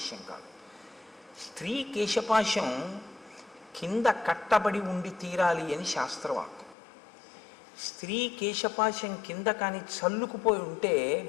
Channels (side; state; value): right; drops out; at 6.8 s